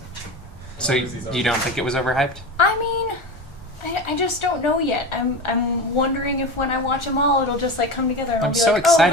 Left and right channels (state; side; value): normal; both; correlation 0.26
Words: So you don't think it was overhyped? I mean, I just don't know yet. I'm wondering if when I watch them all, it'll just come together. And I'll I'm be so like,